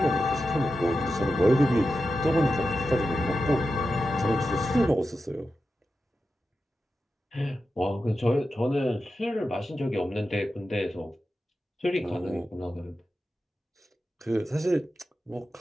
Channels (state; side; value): normal; both; correlation 0.90